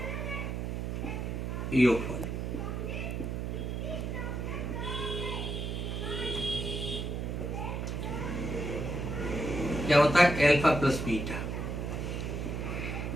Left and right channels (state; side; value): noise; right; hum, 3 dB below the sound